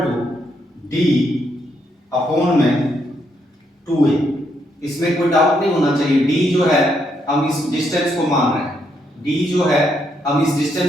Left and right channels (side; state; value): both; normal; correlation 0.76